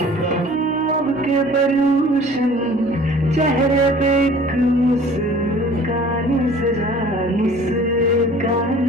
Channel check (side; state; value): both; normal; correlation 0.48